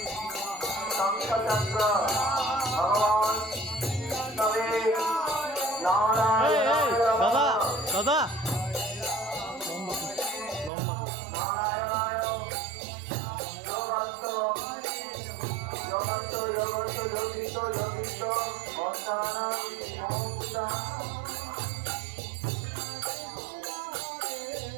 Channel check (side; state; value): left; drops out; at 10.7 s